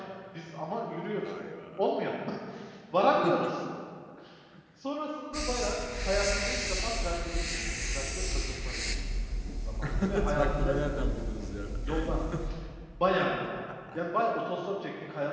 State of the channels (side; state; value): both; identical; correlation 1.00